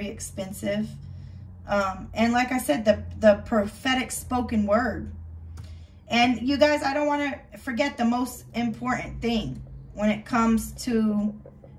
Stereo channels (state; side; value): identical; both; correlation 1.00